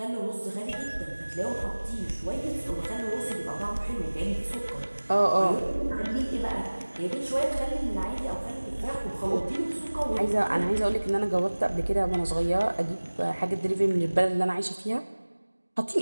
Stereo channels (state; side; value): inverted; both; correlation -1.00